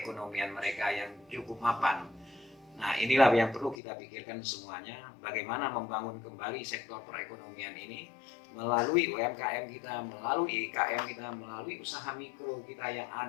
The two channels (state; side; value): drops out; right; at 3.8 s